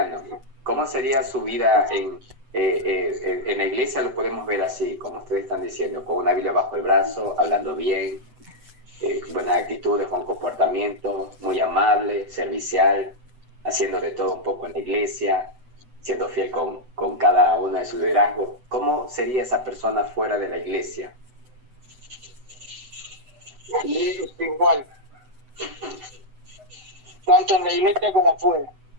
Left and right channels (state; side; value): late; left; 8.0 ms